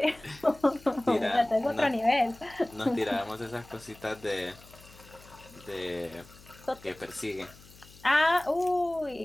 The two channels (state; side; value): noise; left; hum, 22 dB below the sound